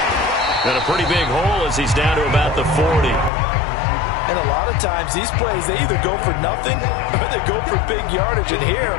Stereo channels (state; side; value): drops out; right; at 3.3 s